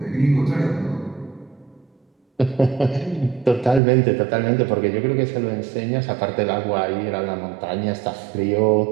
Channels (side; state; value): left; drops out; at 3.8 s